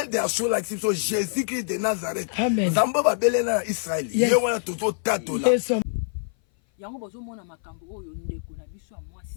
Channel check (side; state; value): right; silent; 58 dB below the other